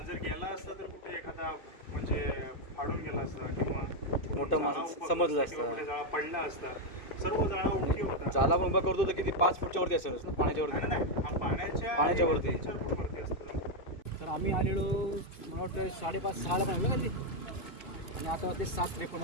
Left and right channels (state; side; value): late; right; 2.6 ms